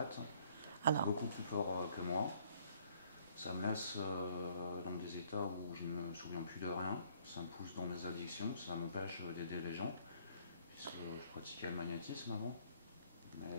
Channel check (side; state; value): both; inverted; correlation -0.62